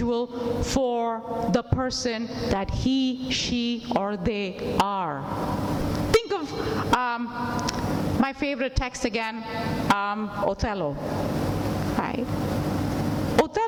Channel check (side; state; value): both; identical; correlation 1.00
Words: for the person that he, she, or they are. Think of my favorite text again, Othello. Right?